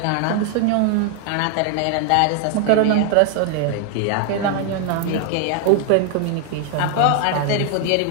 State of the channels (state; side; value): different; both; correlation 0.00